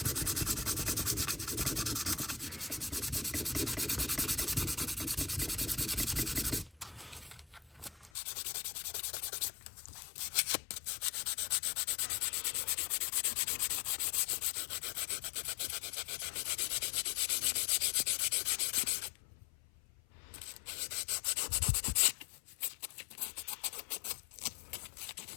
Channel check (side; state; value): right; drops out; at 8.1 s